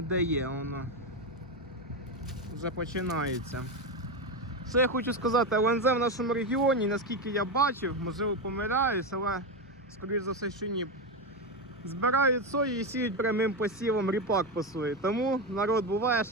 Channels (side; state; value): both; normal; correlation 0.12